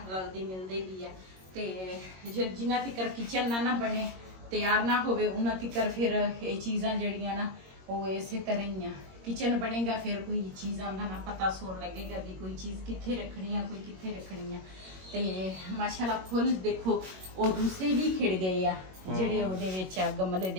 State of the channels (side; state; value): left; late; 21 ms